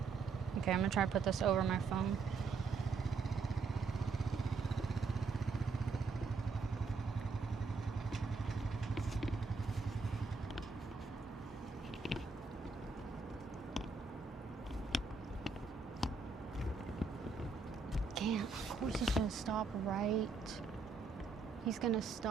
Okay, I'm gonna try to put this over my phone. Damn, of course he's gonna stop right. He's gonna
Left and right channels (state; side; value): quieter; left; 4.4 dB